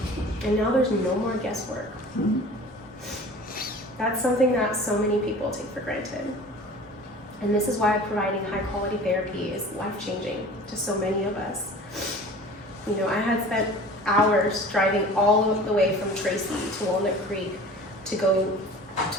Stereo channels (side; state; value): both; normal; correlation 0.42